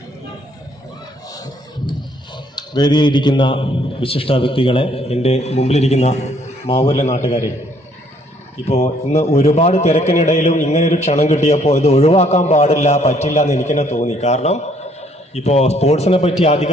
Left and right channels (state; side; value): normal; both; correlation 0.65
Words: വേദിയിലിരിക്കുന്ന വിശിഷ്ട വ്യക്തികളെ, എൻ്റെ മുമ്പിലിരിക്കുന്ന മാവൂരിലെ നാട്ടുകാരെ, ഇപ്പോൾ ഇന്ന് ഒരുപാട് തിരക്കിനിടയിലും ഇങ്ങനെയൊരു ക്ഷണം കിട്ടിയപ്പോൾ ഇത് ഒഴിവാക്കാൻ പറ്റില്ല എന്ന് എനിക്ക് തന്നെ തോന്നി. കാരണം ഇപ്പോൾ സ്പോർട്സിനെ പറ്റി